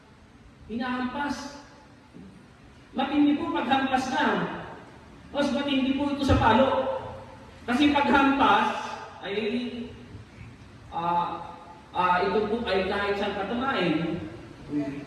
Hinahampas. Matindi po paghampas na. Mas matindi po ito sa palo. Kasi paghampas ay ito po ay kahit saan katamain.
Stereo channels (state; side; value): identical; both; correlation 1.00